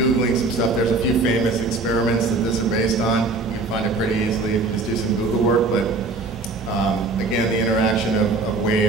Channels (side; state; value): left; quieter; 3.5 dB